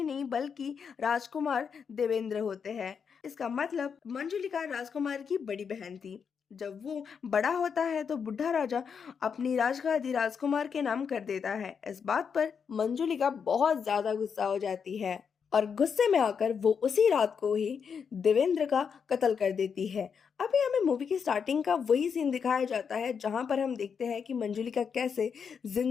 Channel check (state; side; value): quieter; right; 6.6 dB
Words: नहीं बल्कि राजकुमार देवेंद्र होते हैं। इसका मतलब मंजुलिका राजकुमार की बड़ी बहन थी। जब वो बड़ा होता है तो बुढ़ा राजा अपनी राजगादी राजकुमार के नाम कर देता है। इस बात पर मंजुलिका बहुत ज्यादा गुस्सा हो जाती है। और गुस्से में आकर वो उसी रात को ही देवेंद्र का कत्ल कर देती है। अभी हमें मूवी की स्टार्टिंग का वही सीन दिखाया जाता है जहां पर हम देखते हैं कि मंजुलिका कैसे